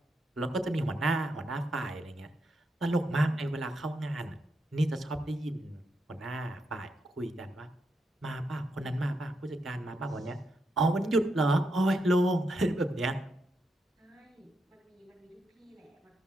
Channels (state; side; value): normal; both; correlation 0.82